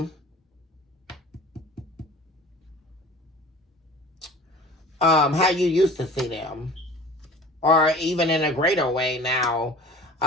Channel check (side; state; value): both; normal; correlation 0.42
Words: How you used to see them. Or even in a greater way now,